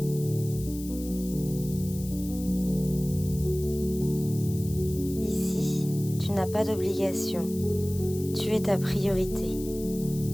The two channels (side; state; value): left; noise; hiss, 15 dB below the sound